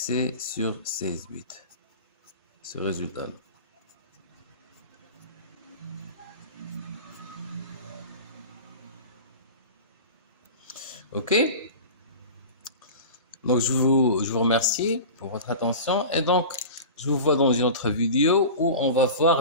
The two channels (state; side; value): inverted; both; correlation -0.33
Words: sur 16 bits, ce résultat-là. OK? Donc, je vous remercie pour votre attention. Et donc, je vous vois dans une autre vidéo où on va voir